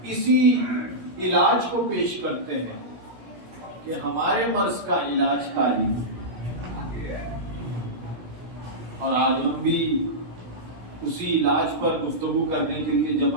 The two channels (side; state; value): left; late; 17 ms